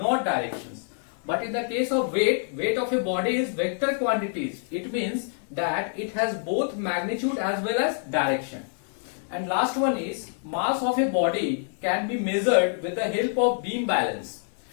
directions. But in the case of weight, weight of a body is vector quantities. It means that it has both magnitude as well as direction. And last one is mass of a body can be measured with the help of beam balance.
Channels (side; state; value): right; silent; 61 dB below the other